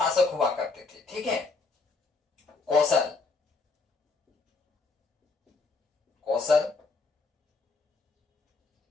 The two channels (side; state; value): right; quieter; 4.0 dB